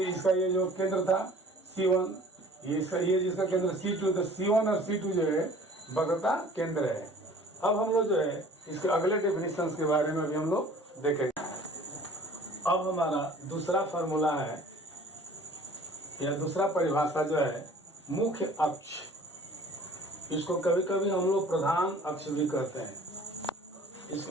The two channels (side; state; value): both; normal; correlation 0.49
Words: इसका ये जो केंद्र था C1, ये जिसका केंद्र C2, तो C1 और C2 जो है वक्रता केंद्र है। अब हम लोग जो है इसके अगले डेफिनेशंस के बारे में भी हम लोग देखेंगे। अब हमारा दूसरा फॉर्मूला है या दूसरा परिभाषा जो है मुख्य अक्ष। इसको कभी कभी हम लोग प्रधान अक्ष भी कहते हैं।